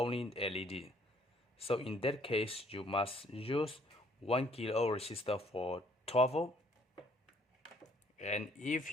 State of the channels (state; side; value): normal; both; correlation 0.63